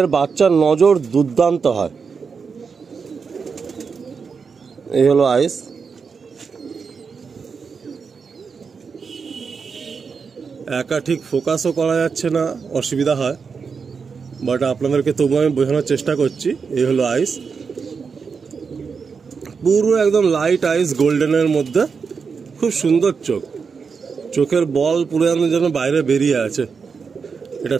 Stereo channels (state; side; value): quieter; left; 5.6 dB